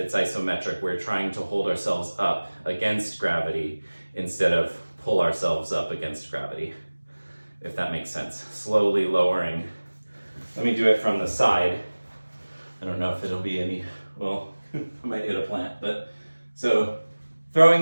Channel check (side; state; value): both; inverted; correlation -1.00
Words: We're trying to hold ourselves up against gravity instead of pull ourselves up against gravity, if that makes sense. Slowly lowering. Let me do it from the side. I don't know if it'll be any, well, I might hit a plant, but so throwing